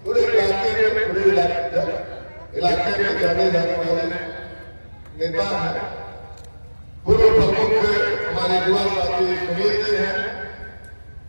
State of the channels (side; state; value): both; inverted; correlation -1.00